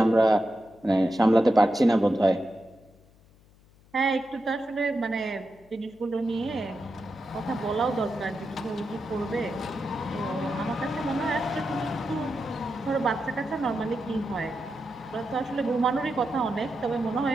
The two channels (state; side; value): noise; left; hum, 28 dB below the sound